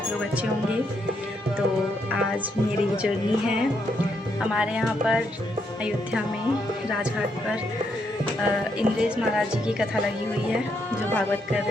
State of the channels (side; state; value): both; normal; correlation 0.77